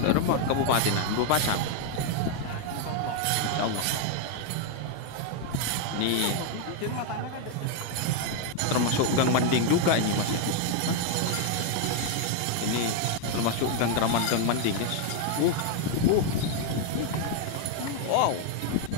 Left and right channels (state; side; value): different; both; correlation 0.00